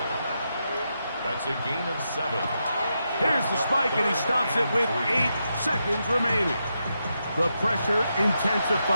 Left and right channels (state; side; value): inverted; both; correlation -0.85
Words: That's a gain of 7. Here's the spike, and he stops it with 8 seconds remaining. The pressure